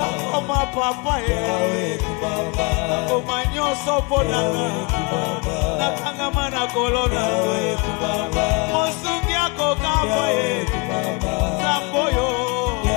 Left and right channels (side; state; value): right; quieter; 29.2 dB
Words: Papa Omanyo sopona Nakanga mana kolona Mosungi ako kapa Samboyo